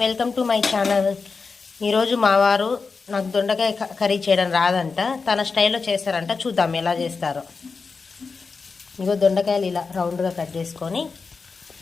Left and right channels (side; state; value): right; quieter; 4.7 dB